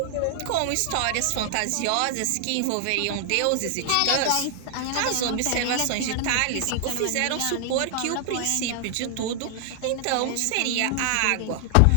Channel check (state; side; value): different; both; correlation 0.00